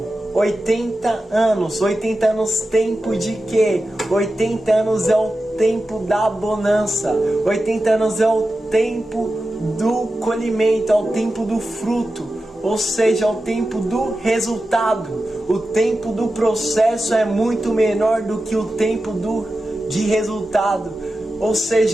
80 anos. 80 anos, tempo de quê? 80 anos é o tempo da bonança. 80 anos é o tempo do colhimento, é o tempo do fruto. Ou seja, é o tempo do resultado. O tempo do processo é muito menor do que o tempo de resultado. Ou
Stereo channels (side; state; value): both; normal; correlation 0.92